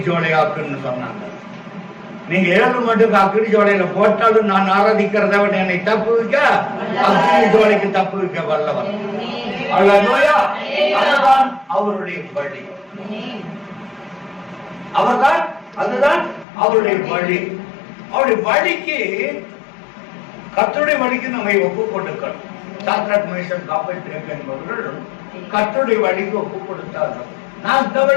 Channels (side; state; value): right; drops out; at 16.4 s